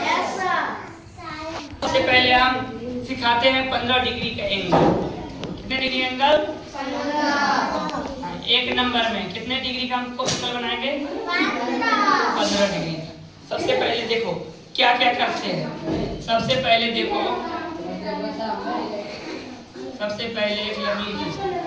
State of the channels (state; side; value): identical; both; correlation 1.00